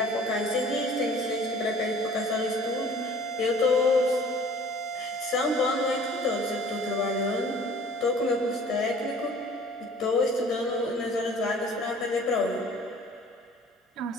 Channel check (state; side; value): normal; both; correlation 0.50